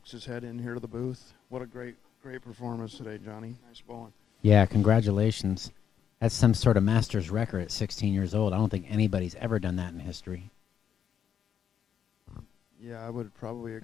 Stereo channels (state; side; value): quieter; right; 8.4 dB